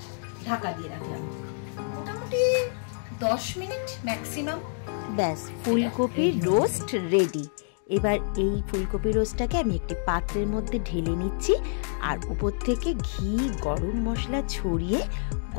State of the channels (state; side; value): silent; right; digital silence